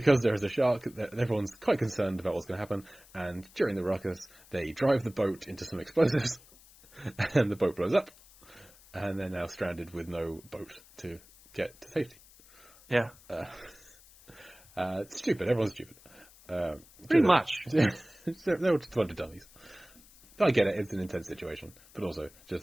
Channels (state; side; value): noise; left; hiss, 24 dB below the sound